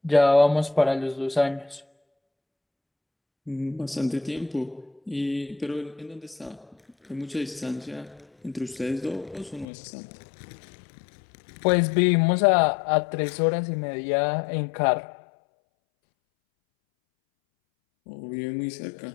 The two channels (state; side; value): drops out; right; at 9.7 s